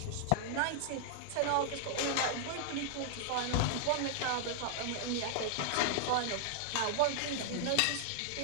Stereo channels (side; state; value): both; different; correlation -0.01